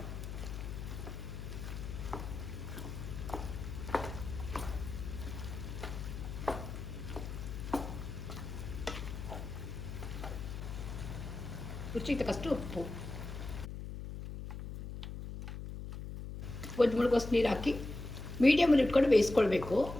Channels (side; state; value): left; noise; hum, 7 dB below the sound